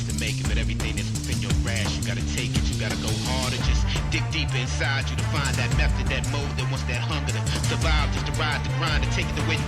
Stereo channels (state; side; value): identical; both; correlation 1.00